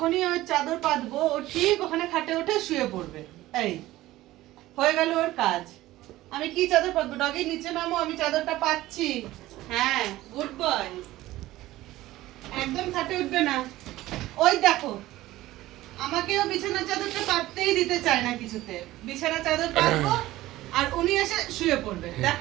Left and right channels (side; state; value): left; quieter; 16.5 dB